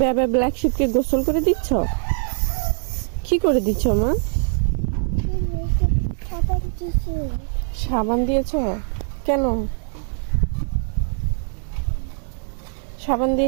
বেবে ব্ল্যাক শিপকে গোসল করে দিচ্ছ? কি করে দিচ্ছ মা? সাবান দিয়েছ? কেন? সাবান দিয়ে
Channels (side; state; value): left; silent; 64 dB below the other